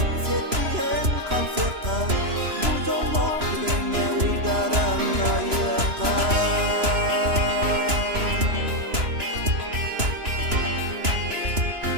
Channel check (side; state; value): left; late; 3.0 ms